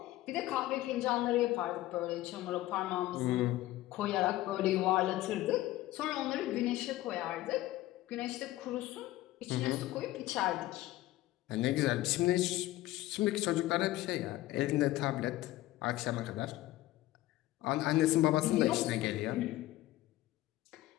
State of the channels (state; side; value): quieter; right; 16.3 dB